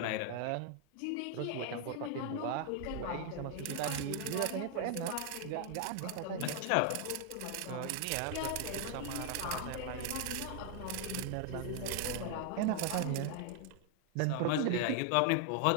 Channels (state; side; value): different; both; correlation 0.00